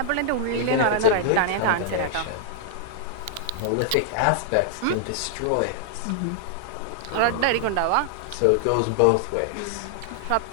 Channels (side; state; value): both; different; correlation -0.01